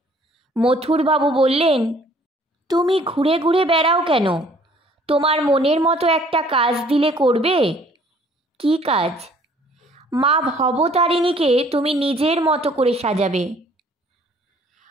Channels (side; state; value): both; normal; correlation 0.58